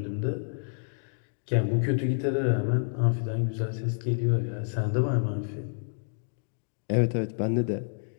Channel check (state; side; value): silent; right; digital silence